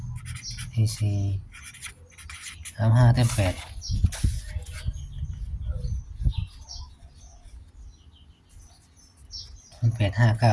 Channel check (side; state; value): both; identical; correlation 1.00